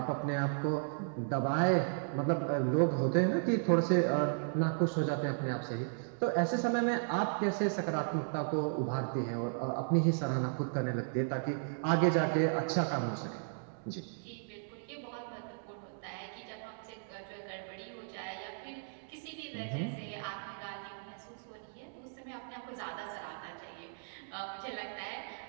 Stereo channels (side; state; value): left; silent; digital silence